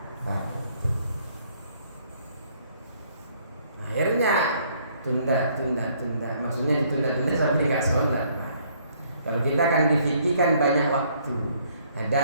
pagi. Akhirnya tunda, maksudnya ditunda-tunda sampai nggak sholat. Nah, kalau kita kan difikirkan banyak waktu.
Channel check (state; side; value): inverted; both; correlation -0.65